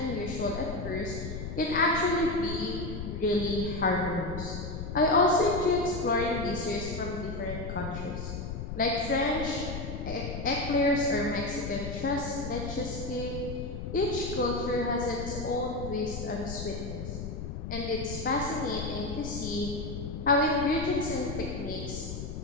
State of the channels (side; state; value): left; noise; rumble, 6 dB below the sound